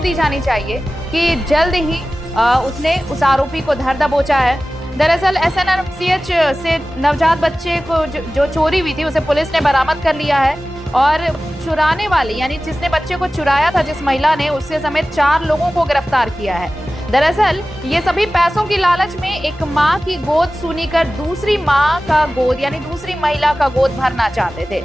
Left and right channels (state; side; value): normal; both; correlation 0.96